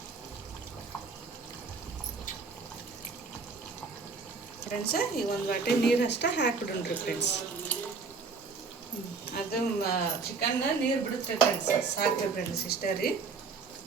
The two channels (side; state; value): left; quieter; 4.7 dB